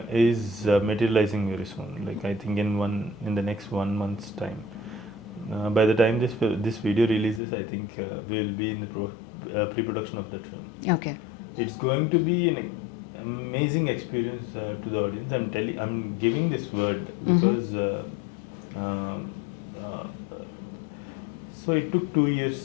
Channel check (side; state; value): right; drops out; at 7.4 s